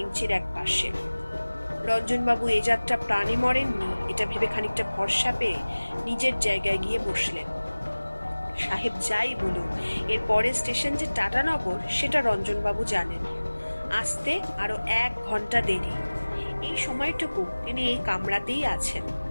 এক পাশে। রঞ্জনবাবু এ যাত্রা প্রাণে মরেননি, এটা ভেবে খানিকটা ভরসা পেয়ে নিজের জায়গায় গিয়ে বসলেন। সাহেব যাই বলুন, এর পরের স্টেশন যে টাটানগর সেটা রঞ্জনবাবু জানেন। আসতে আরো 1 ঘন্টা দেরি। এই সময়টুকু তিনি এই কামরাতেই আছেন।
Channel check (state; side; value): inverted; both; correlation -1.00